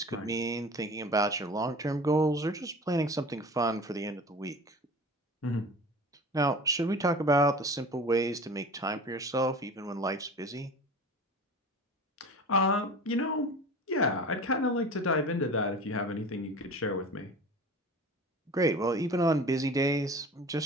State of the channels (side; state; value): both; normal; correlation 0.38